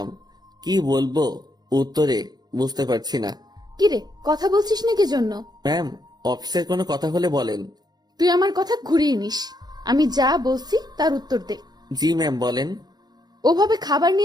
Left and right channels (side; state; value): left; late; 0.20 ms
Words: কি বলবো উত্তরে বুঝতে পারছি না। কিরে, কথা বলছিস না কি জন্য? ম্যাম, অফিসের কোনো কথা হলে বলেন। তুই আমার কথা ঘুরিয়ে নিস। আমি যা বলছি তার উত্তর দে। জি ম্যাম, বলেন। ওভাবে খাবার